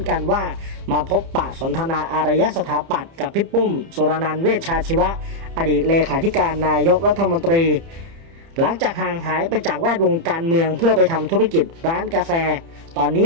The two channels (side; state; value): left; late; 30 ms